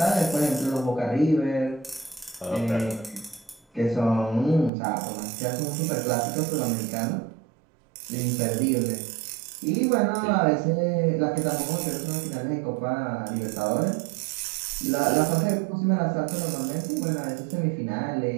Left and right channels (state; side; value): drops out; left; at 4.7 s